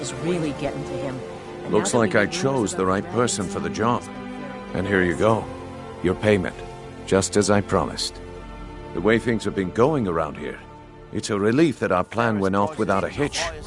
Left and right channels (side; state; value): both; identical; correlation 1.00